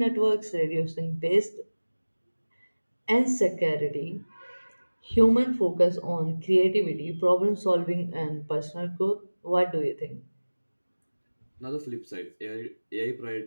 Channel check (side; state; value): both; inverted; correlation -1.00